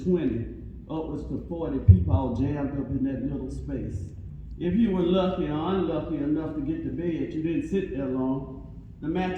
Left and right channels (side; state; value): both; identical; correlation 1.00